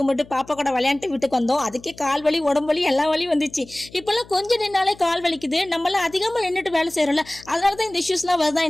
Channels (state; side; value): noise; left; hum, 22 dB below the sound